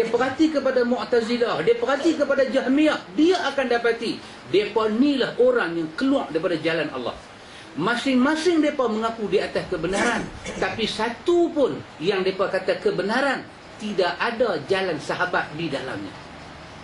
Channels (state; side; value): identical; both; correlation 1.00